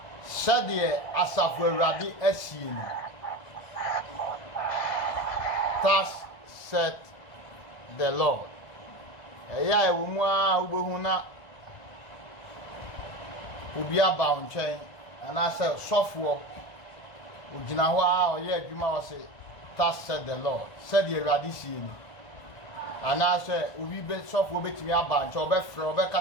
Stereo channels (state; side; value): late; right; 1.5 ms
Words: Said the Asafweradi Esien. Thus said the Lord. Eya ewumwa ubehuna ubia ba nchen anase sofo ugina ho a oye adwuma wo se thus said the Lord. Said the Radisien. Anase ubi be sofo betimi aba nchen obefre